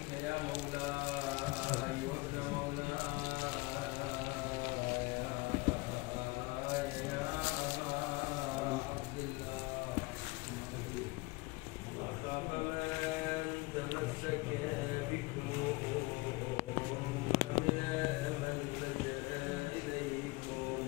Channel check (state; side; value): quieter; right; 23.4 dB